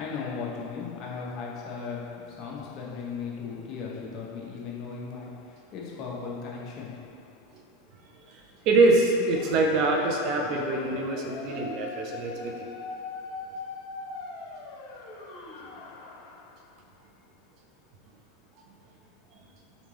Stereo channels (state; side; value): normal; both; correlation 0.33